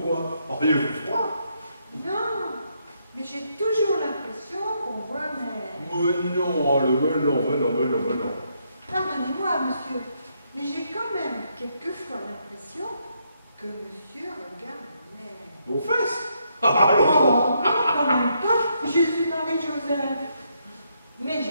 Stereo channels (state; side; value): inverted; both; correlation -0.76